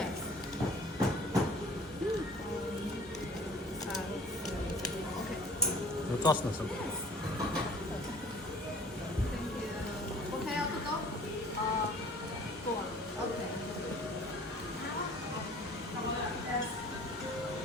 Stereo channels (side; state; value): both; normal; correlation 0.49